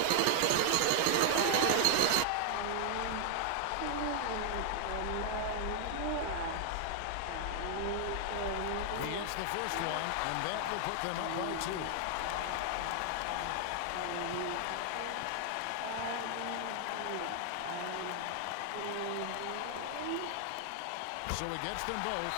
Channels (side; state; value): both; different; correlation 0.00